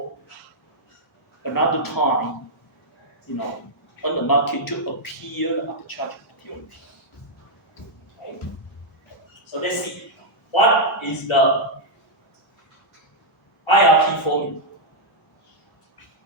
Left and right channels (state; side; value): normal; both; correlation -0.05